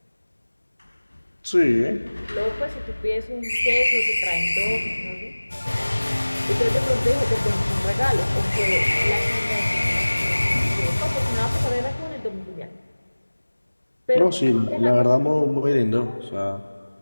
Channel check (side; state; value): both; inverted; correlation -1.00